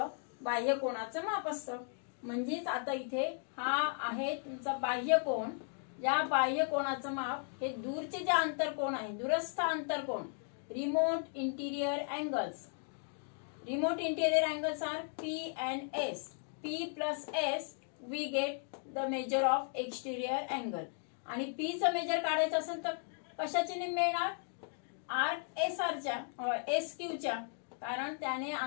बाह्य कोणाचं माप असतं. म्हणजेच आता इथे हा आहे तुमचा बाह्य कोण. या बाह्य कोणाचं माप हे दूरचे जे आंतरकोण आहे, दूरस्थ आंतरकोण, remote interior angles. Remote interior angles are P and S. P plus S we get the measure of exterior angle. आणि पी चं मेजर काढायचं असेल तर कशाचे निम्मे येणार, आर्क एस आरच्या एस क्यूच्या, कारण त्याने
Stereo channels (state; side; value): silent; right; 54 dB below the other